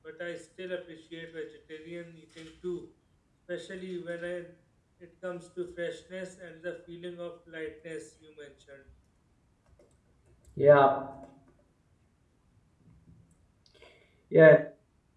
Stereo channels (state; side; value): identical; both; correlation 1.00